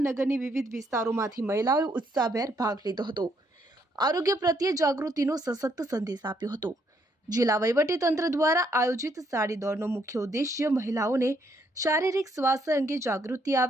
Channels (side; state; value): both; normal; correlation 0.72